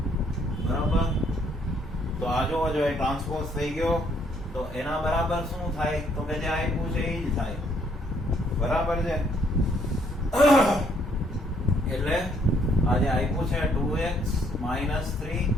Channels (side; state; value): both; normal; correlation 0.67